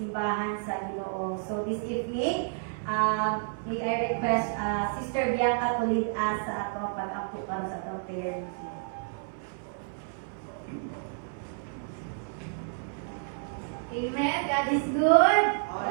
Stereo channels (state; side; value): silent; left; 57 dB below the other